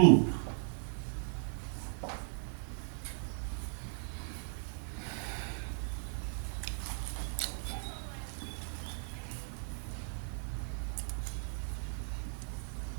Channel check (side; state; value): left; silent; digital silence